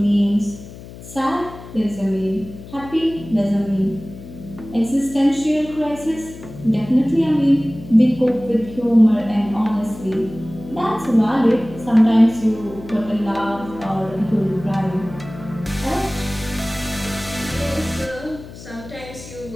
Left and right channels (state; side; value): noise; left; hum, 15 dB below the sound